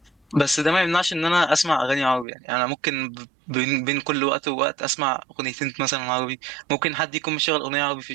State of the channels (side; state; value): left; drops out; at 2.2 s